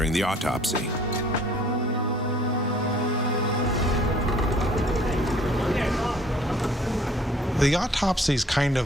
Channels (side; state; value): both; normal; correlation 0.56